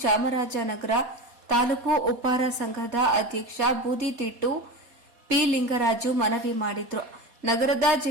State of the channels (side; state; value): left; late; 4.2 ms